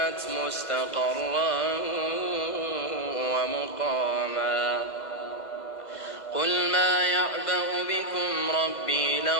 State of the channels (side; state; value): right; late; 2.0 ms